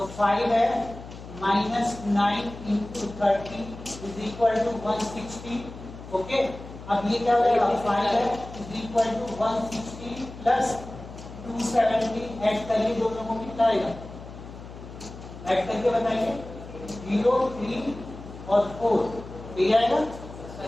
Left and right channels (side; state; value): left; noise; hum, 14 dB below the sound